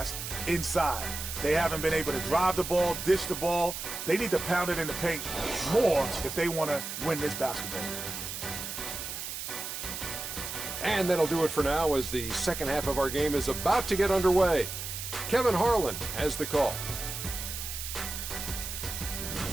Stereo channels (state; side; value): noise; right; hiss, 6 dB below the sound